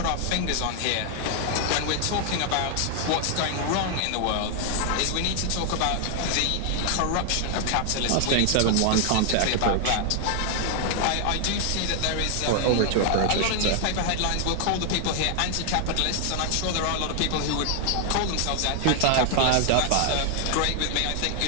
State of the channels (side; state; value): both; different; correlation 0.00